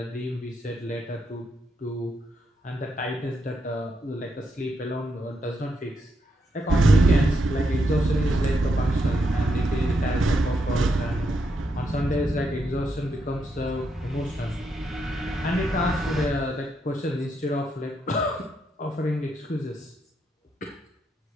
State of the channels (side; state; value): both; normal; correlation 0.80